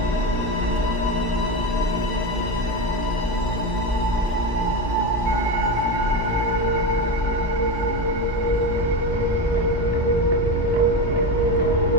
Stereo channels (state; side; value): normal; both; correlation 0.18